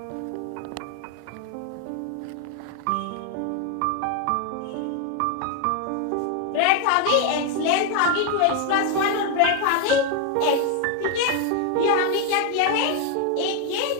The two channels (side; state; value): both; different; correlation 0.01